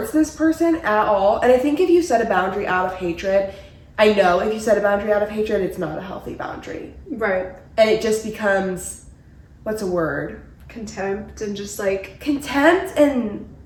this person at all. And I think if you set a boundary out of hatred, I know if you set a boundary out of hatred, it's not a healthy boundary. Right. And it just becomes, what's a word? Contempt and just like... Contempt and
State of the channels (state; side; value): identical; both; correlation 1.00